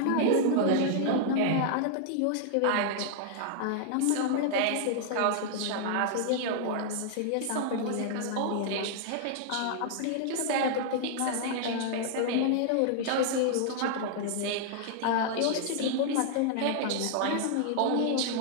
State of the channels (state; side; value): different; both; correlation -0.01